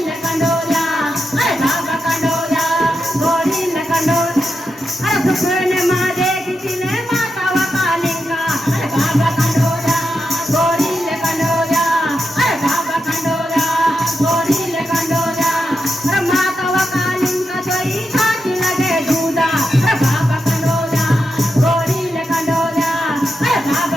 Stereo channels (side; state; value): both; normal; correlation 0.86